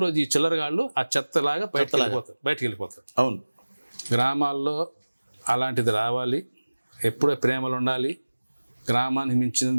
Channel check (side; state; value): both; inverted; correlation -1.00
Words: రోజు ఈ చిల్లరగాళ్ళు ఆ చెత్తలాగా బయటకు వెళ్ళిపోతారు. అవును. గ్రామాల్లో అలాంటిది రావాలి. ఎప్పుడో ప్రేమలు ఉండాలి. గ్రామానికి